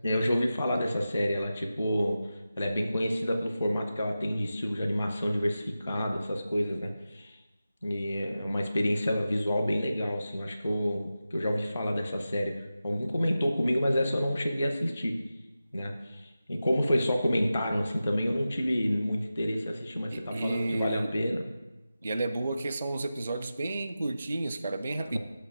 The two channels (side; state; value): both; inverted; correlation -0.93